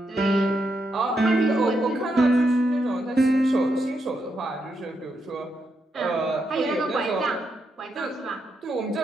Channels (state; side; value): normal; both; correlation 0.82